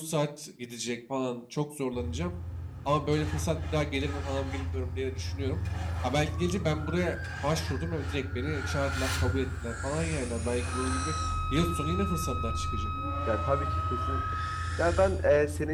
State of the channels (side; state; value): both; identical; correlation 1.00